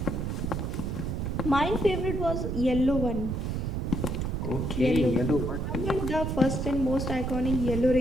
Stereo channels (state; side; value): noise; right; rumble, 2 dB below the sound